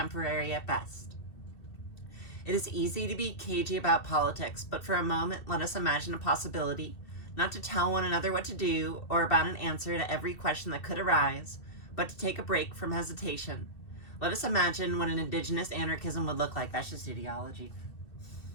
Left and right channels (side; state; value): right; late; 2.7 ms